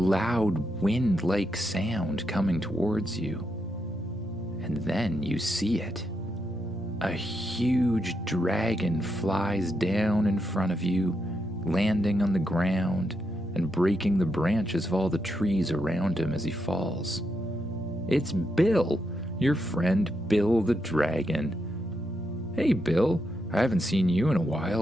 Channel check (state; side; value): normal; both; correlation 0.82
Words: wind-like sound coming towards you. And then you see it. A huge dragon flies down in front of you, landing on the ground and breaking the branches of all the trees around him as he falls. It's Bill, your friend Bill the dragon. Hey Bill, I haven't seen you in a